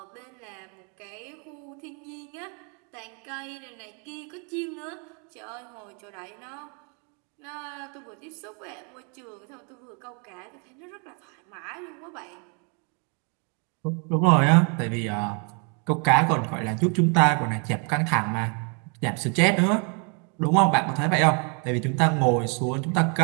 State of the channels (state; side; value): quieter; left; 37.1 dB